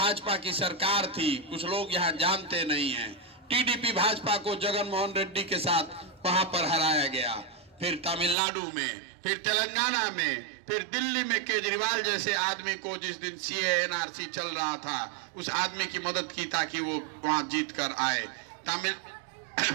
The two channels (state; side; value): drops out; left; at 8.3 s